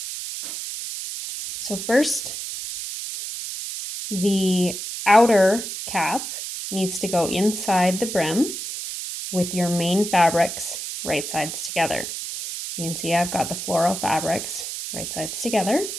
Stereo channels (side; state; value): right; noise; hiss, 6 dB below the sound